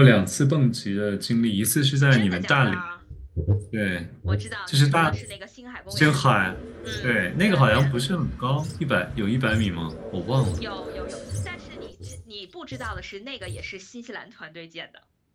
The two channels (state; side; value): identical; both; correlation 1.00